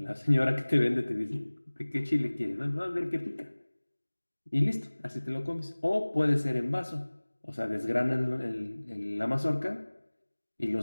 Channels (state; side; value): inverted; both; correlation -1.00